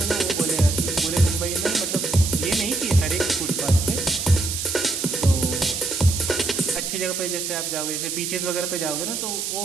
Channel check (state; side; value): noise; right; hiss, 3 dB below the sound